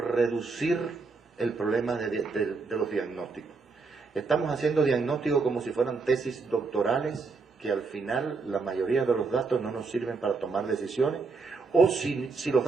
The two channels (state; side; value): quieter; left; 4.3 dB